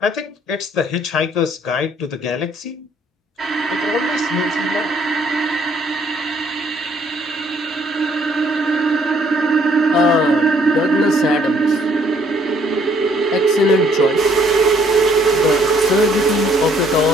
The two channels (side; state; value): both; normal; correlation 0.65